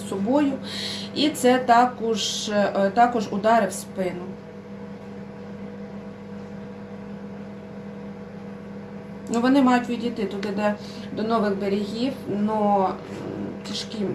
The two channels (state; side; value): identical; both; correlation 1.00